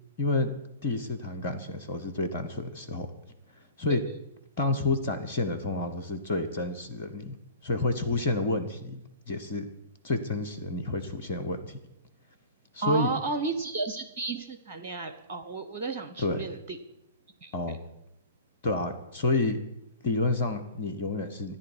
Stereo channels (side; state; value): both; inverted; correlation -0.38